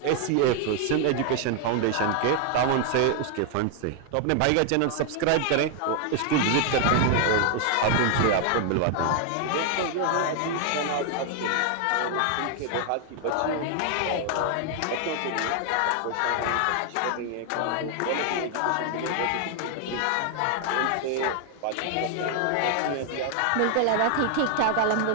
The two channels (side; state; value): both; different; correlation 0.00